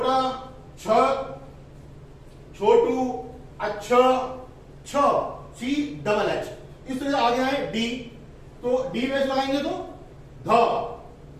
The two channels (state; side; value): identical; both; correlation 1.00